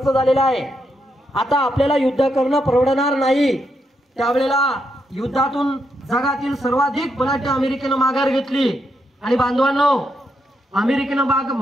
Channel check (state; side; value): normal; both; correlation 0.81